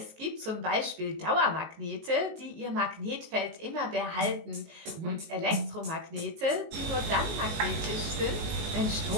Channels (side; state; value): left; late; 19 ms